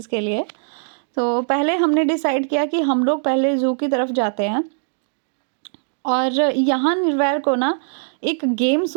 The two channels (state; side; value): silent; left; digital silence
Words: के लिए। तो पहले हमने डिसाइड किया कि हम लोग पहले ज़ू की तरफ जाते हैं। और यहाँ निर्वैर को ना एक गेम